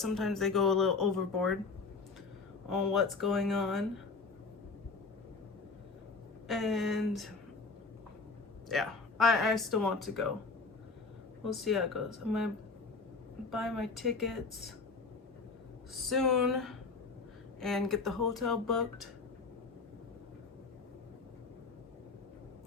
they go a little overboard on what's going on. And yeah, I still want to go. We'll see how it goes. I'm gonna buy my tickets soon and get the hotel booked,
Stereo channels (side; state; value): right; quieter; 4.3 dB